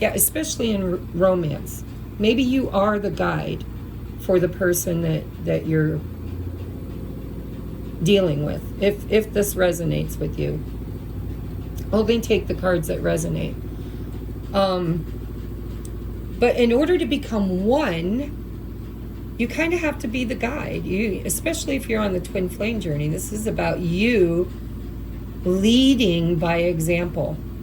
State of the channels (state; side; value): identical; both; correlation 1.00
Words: especially in romance. Maybe you are the guide for the person that you're dealing with, if this resonates with you. Only take the cards that resonate. But in order to become one, you kind of have to be the guide. Especially if you're on the twin flame journey, this is about you leading by example.